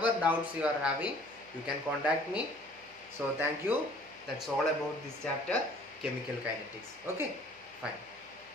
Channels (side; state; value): left; noise; hum, 29 dB below the sound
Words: doubts you are having, you can contact me. So thank you. That's all about this chapter, chemical kinetics. Okay, fine.